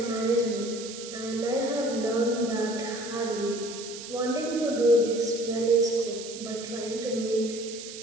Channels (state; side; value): noise; right; hiss, 11 dB below the sound